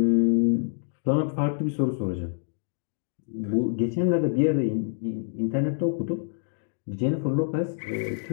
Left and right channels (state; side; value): silent; right; digital silence